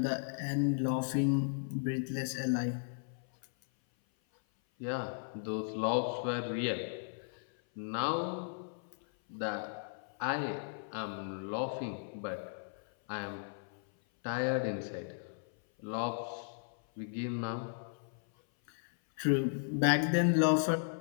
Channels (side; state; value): right; silent; 54 dB below the other